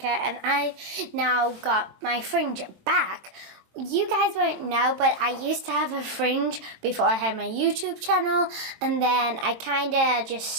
and I've now got my fringe back. You guys won't know, but I used to have a fringe before I had my YouTube channel, and then I kind of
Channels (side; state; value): left; late; 23 ms